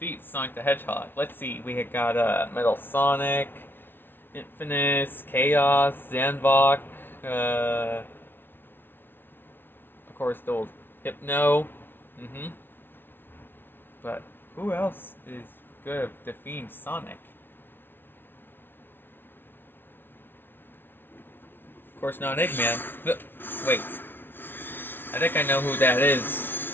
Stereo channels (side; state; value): right; late; 0.10 ms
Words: Sonic the Hedgehog? Let's see, we had got Metal Sonic, Infinus, Chaos, Zanvok, of course, the old Hypno. But who else is good at defeating Sonic? Of course, not Eggman. Wait, I think I know who that is.